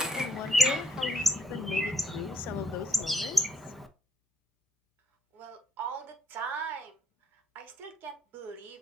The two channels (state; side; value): normal; both; correlation 0.70